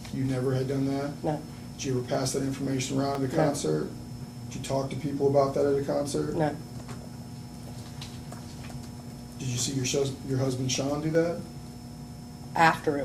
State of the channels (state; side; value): identical; both; correlation 1.00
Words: You never had done that? No. Did you ever pass that information around at a No. concert? Did you talk to people about that at a concert? No. Did you see your husband Sean do that? After